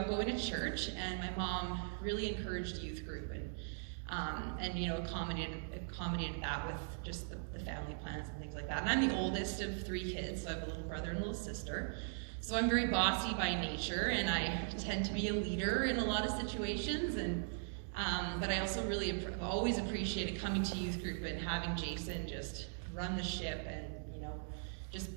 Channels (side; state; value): left; silent; digital silence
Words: going to church, and my mom really encouraged youth group and you know, accommodated that with just the family plans and things like that. And I'm the oldest of 3 kids, so I have a little brother and a little sister. So I'm very bossy by nature, and I tend to be a leader in a lot of situations. And but I also really always appreciated coming to youth group and having Jason just run the ship and, you know,